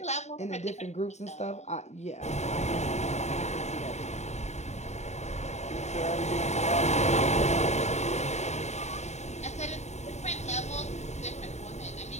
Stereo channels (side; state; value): right; late; 0.33 ms